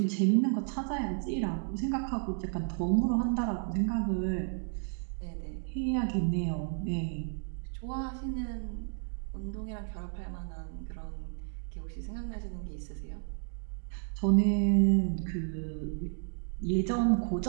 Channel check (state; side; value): silent; left; 56 dB below the other